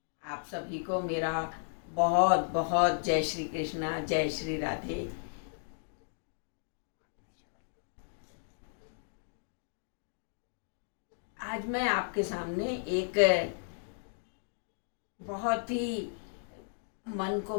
आप सभी को मेरा बहुत बहुत जय श्री कृष्णा, जय श्री राधे। आज मैं आपके सामने एक बहुत ही मन को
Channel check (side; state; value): right; silent; digital silence